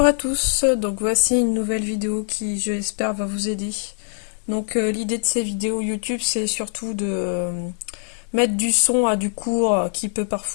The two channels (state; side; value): silent; right; 60 dB below the other